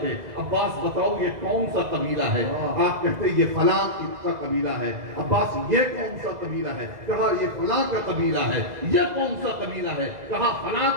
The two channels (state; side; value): late; left; 2.0 ms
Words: عباس بتاؤ یہ کون سا قبیلہ ہے؟ آپ کہتے یہ فلاں کا قبیلہ ہے. عباس یہ کون سا قبیلہ ہے؟ کہا یہ فلاں کا قبیلہ ہے. یہ کون سا قبیلہ ہے؟ کہا فلاں